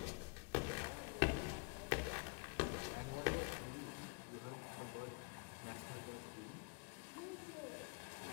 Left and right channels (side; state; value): right; quieter; 31.0 dB